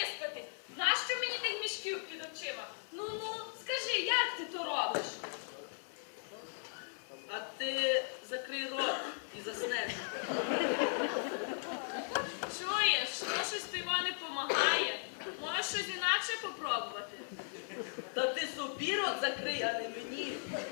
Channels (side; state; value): right; silent; 53 dB below the other